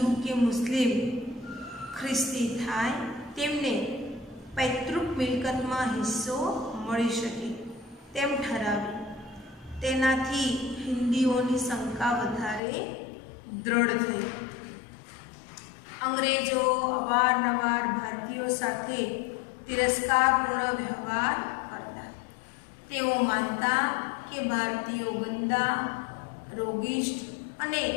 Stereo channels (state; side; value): drops out; right; at 12.6 s